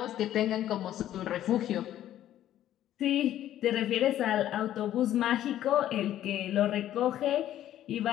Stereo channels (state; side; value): quieter; right; 12.2 dB